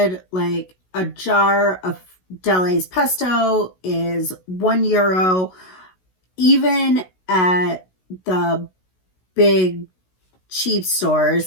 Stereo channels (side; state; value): right; late; 16 ms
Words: Like a jar of Delays pesto is €1. Even at the big cheap